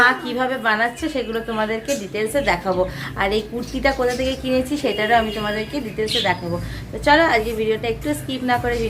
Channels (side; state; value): both; identical; correlation 1.00